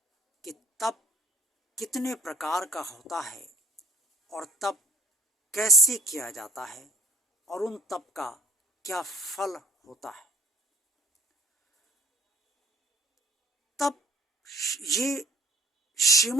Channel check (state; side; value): normal; both; correlation 0.60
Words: कि तप कितने प्रकार का होता है और तप कैसे किया जाता है और उन तप का क्या फल होता है। तप ये